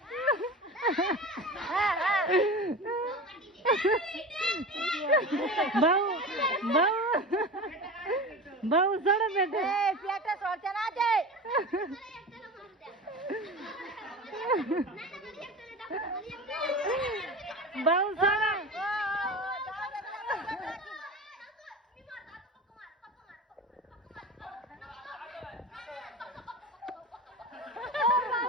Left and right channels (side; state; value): both; normal; correlation 0.30